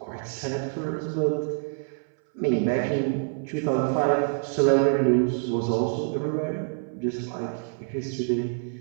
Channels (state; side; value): silent; left; 59 dB below the other